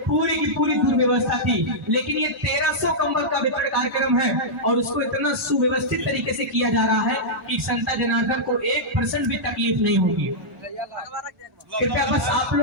पूरी की पूरी दुर्व्यवस्था थी। लेकिन ये 1300 कंबल का वितरण कार्यक्रम है और उसको इतना सुव्यवस्थित तरीके से किया जा रहा है कि संता जनार्दन को 1% भी तकलीफ नहीं होगी। कृपया बस आप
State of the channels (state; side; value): normal; both; correlation -0.10